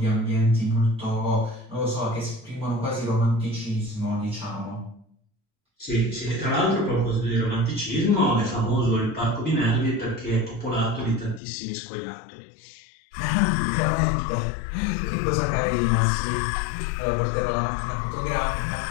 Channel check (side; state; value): right; drops out; at 11.4 s